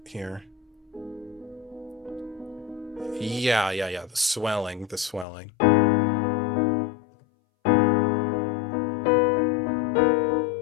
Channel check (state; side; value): drops out; right; at 5.2 s